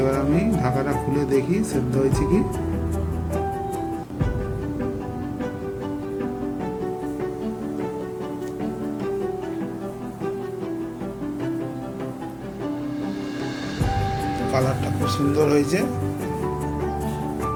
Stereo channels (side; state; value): both; identical; correlation 1.00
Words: আমি ঢাকাটা খুলে দেখি সেদ্ধ হয়েছে কি। কালারটা খুব সুন্দর হয়েছে।